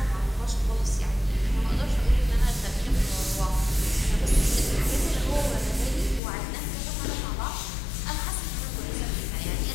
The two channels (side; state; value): right; drops out; at 6.2 s